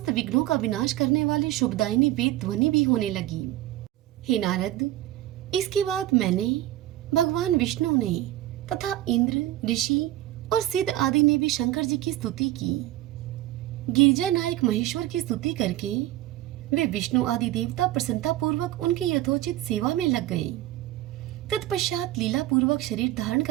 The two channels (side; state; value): left; quieter; 14.9 dB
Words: विघ्नों का विनाश करने वाली शुभदायिनी वेद ध्वनि भी होने लगी। हे नारद, इसके बाद मैंने, भगवान विष्णु ने तथा इंद्र, ऋषि और सिद्ध आदि ने भी शंकर जी की स्तुति की। गिरिजा नायक महेश्वर की स्तुति करके वे विष्णु आदि देवता प्रसन्नता पूर्वक उनकी यथोचित सेवा में लग गए। तत्पश्चात लीला पूर्वक शरीर धारण